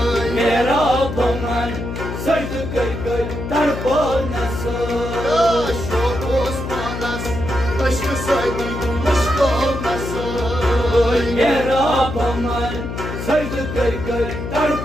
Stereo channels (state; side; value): noise; left; hum, 6 dB below the sound